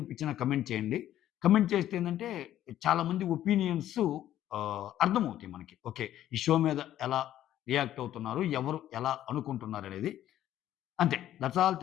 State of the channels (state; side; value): quieter; right; 12.3 dB